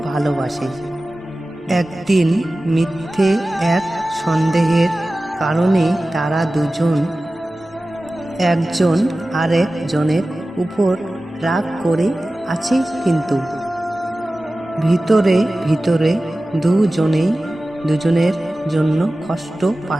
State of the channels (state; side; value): normal; both; correlation 0.96